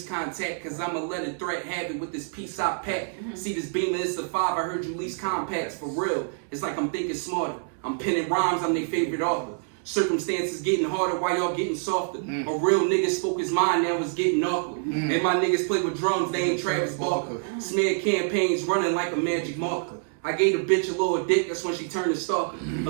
contact. Cause I'ma let a threat have it with this piece I pack. See this beamer, it's a 5, I heard you lease compacts. For real, it's like I'm thinking smarter. I'm penning rhymes, I'm their favorite author. Circumstances getting harder while y'all getting softer. A real nigga spoke his mind, now it's getting awkward. And my niggas play with drums, they ain't Travis Barker. Smear campaigns running like a magic marker. I gave the bitch a little dick, that's when she turned to stalker.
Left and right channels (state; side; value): silent; left; 61 dB below the other